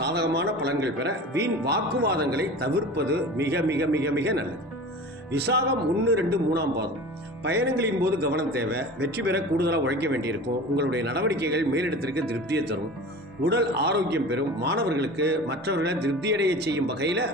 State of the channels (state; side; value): normal; both; correlation 0.36